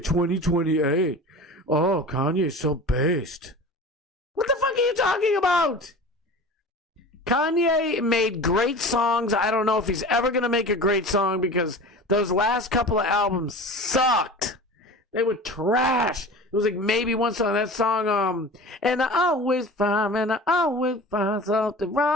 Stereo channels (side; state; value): both; normal; correlation 0.36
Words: 2028. Oh, Kanye's so based. What the fuck are you talking about? Kanye made great songs. I don't know if he's ever going to make a great song because those last couple of albums sucked. They were trash. It was like maybe one song, that song, and I always find something